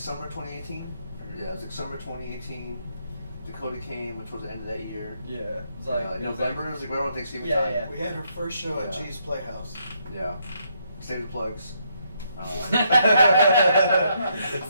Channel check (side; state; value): both; inverted; correlation -0.75